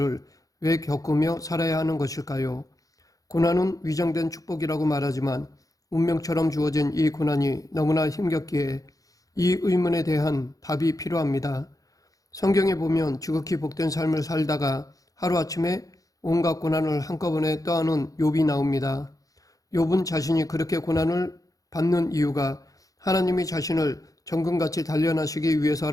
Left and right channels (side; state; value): right; late; 0.17 ms